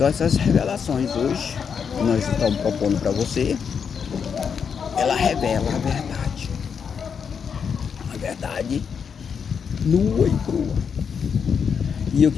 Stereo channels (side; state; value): right; quieter; 6.7 dB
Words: essas revelações hoje, que nós estamos propondo para você, ela revela a verdade. A verdade nua e crua. E eu